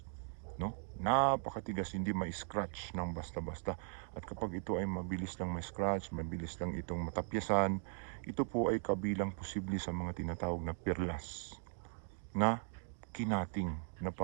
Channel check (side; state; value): left; silent; 52 dB below the other